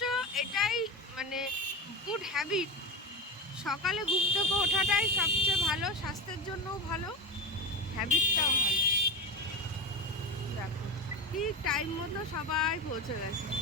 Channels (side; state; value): both; normal; correlation 0.23